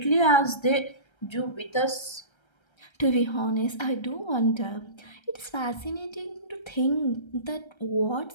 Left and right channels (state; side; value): late; right; 1.3 ms